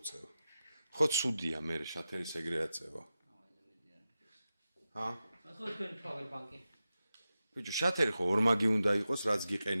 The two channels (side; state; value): both; inverted; correlation -0.92